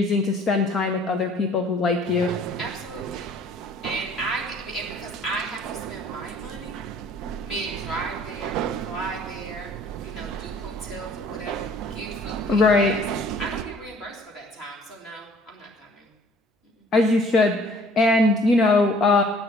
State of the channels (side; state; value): both; normal; correlation 0.54